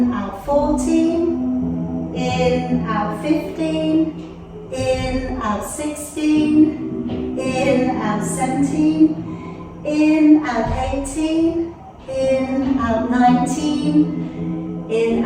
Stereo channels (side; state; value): both; identical; correlation 1.00